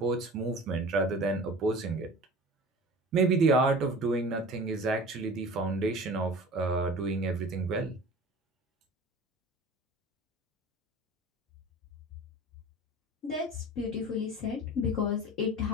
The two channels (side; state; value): both; normal; correlation 0.40